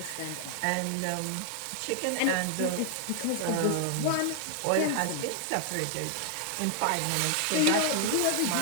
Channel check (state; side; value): different; both; correlation 0.00